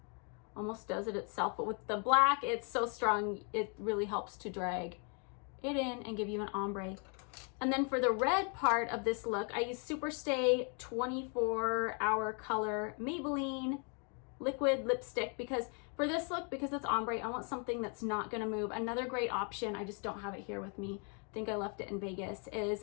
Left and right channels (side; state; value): right; quieter; 38.4 dB